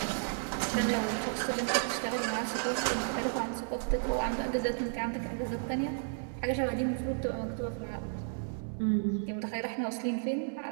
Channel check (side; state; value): left; silent; digital silence